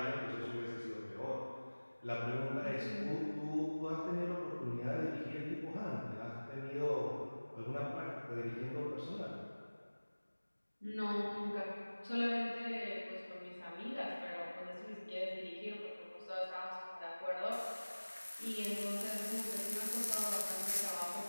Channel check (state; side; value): inverted; both; correlation -1.00